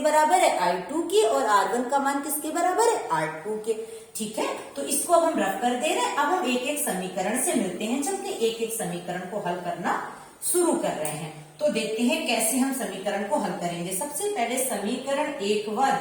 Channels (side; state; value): both; identical; correlation 1.00